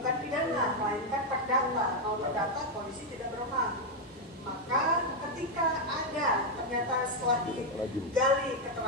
pidana, melainkan perdata. Kalau perdata, polisi tidak berwenang. Maka ketika ada, ternyata setelah digali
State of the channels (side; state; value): both; normal; correlation 0.02